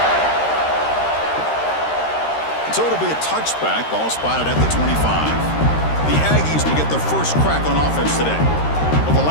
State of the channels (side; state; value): right; late; 13 ms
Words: So it'll be a touchback, ball spotted at the 25. The Aggies will get their first crack on offense today. Well, the